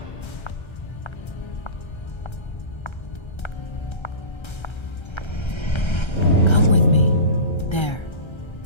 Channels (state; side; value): late; right; 1.3 ms